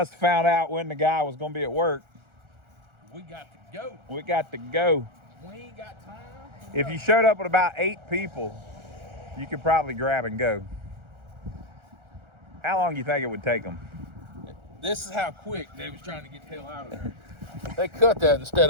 have found out when the guy was going to be at work. We got to go. We got to go. We ain't got time. If you showed up with about 8 people, you could probably grab and go. How long do you think it would take them? This is how quick they was trying to get the hell out of there. They cut that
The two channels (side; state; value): left; late; 1.4 ms